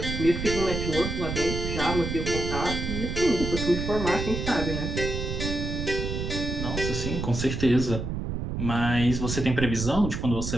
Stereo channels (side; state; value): right; noise; rumble, 4 dB below the sound